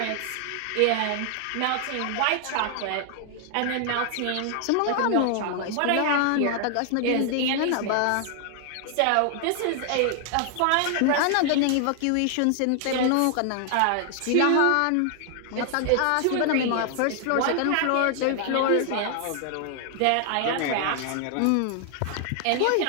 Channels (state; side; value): different; both; correlation 0.00